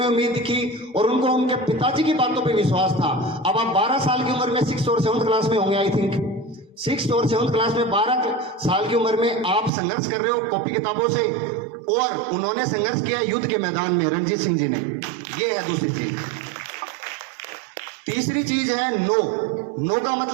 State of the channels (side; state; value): left; drops out; at 9.7 s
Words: उम्मीद की और उनको उनके पिताजी की बातों पे विश्वास था। अब आप 12 साल की उम्र में 6th और 7th क्लास में होंगे, आई थिंक 6th और 7th क्लास में 12 साल की उम्र में आप संघर्ष कर रहे हो कॉपी किताबों से, और उन्होंने संघर्ष किया युद्ध के मैदान में, रणजीत सिंह जी ने। ये है दूसरी चीज। तीसरी चीज है नो का